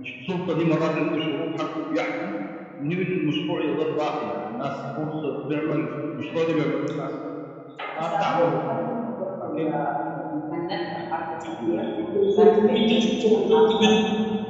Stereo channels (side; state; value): both; identical; correlation 1.00